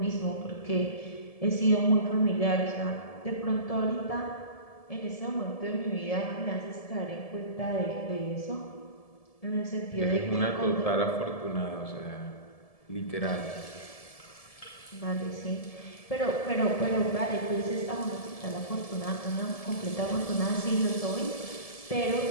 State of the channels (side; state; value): right; late; 1.7 ms